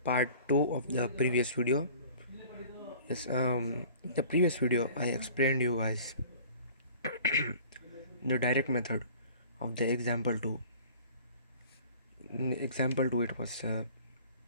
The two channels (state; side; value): inverted; both; correlation -0.47